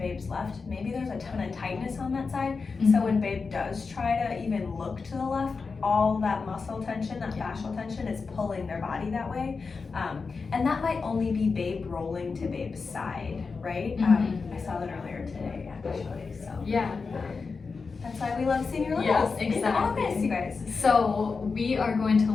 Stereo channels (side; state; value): right; quieter; 4.7 dB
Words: left, maybe there's a ton of tightness on that side. So when babe does try to even look to the left, all that muscle tension, that fascial tension is pulling their body that way. And that might only be babe rolling to babe's side, right? I saw that earlier today, actually. So that's why we love seeing your littles in the office, you guys. So we are going to